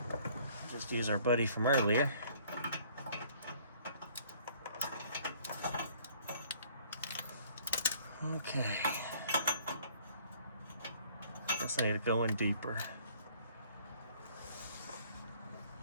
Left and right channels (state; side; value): inverted; both; correlation -0.58